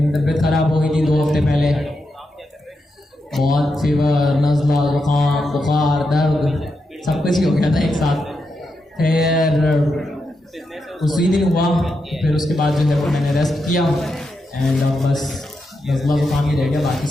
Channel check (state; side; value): normal; both; correlation 0.85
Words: तबीयत ख़राब हो गई थी 2 हफ्ते पहले, बहुत फीवर, नज़ला, ज़ुकाम, बुखार, दर्द, सब कुछ ही हो गया था एक साथ। फिर उसी दिन हुआ, फिर उसके बाद जो है वो मैंने रेस्ट किया एंड अब बस नज़ला ज़ुकाम ही रह गया, बाकी